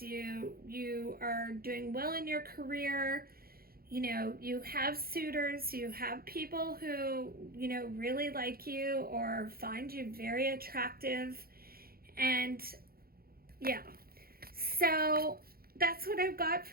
You are doing well in your career. You know, you have suitors, you have people who, you know, really like you or find you very attractive. And yeah, so that's what I've got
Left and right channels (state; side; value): late; left; 0.44 ms